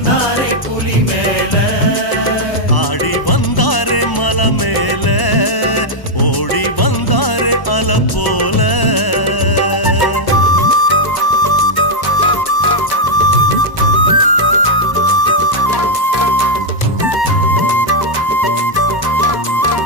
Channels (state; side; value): late; right; 1.0 ms